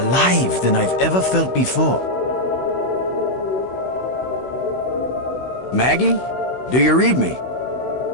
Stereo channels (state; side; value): late; right; 16 ms